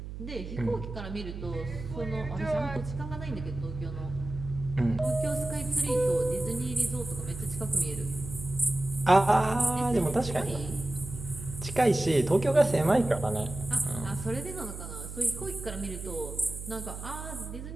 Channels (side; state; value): right; noise; hum, 10 dB below the sound